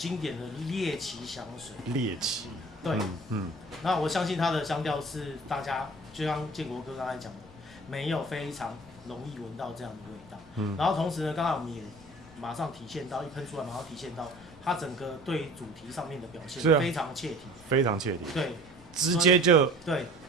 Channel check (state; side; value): noise; left; rumble, 23 dB below the sound